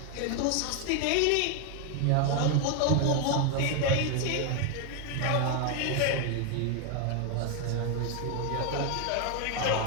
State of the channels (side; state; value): both; different; correlation 0.01